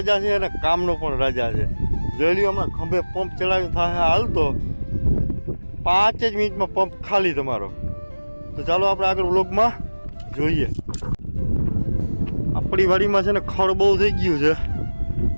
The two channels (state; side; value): inverted; both; correlation -1.00